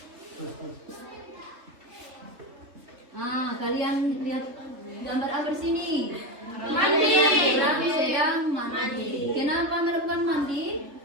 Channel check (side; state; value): left; late; 3.2 ms